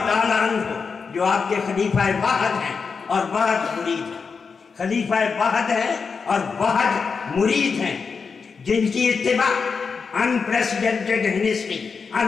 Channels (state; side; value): quieter; right; 5.3 dB